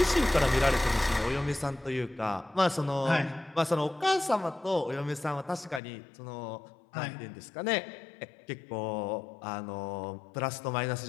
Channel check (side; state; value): right; drops out; at 5.8 s